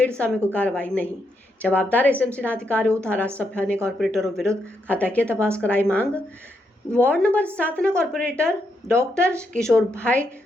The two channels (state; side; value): normal; both; correlation 0.80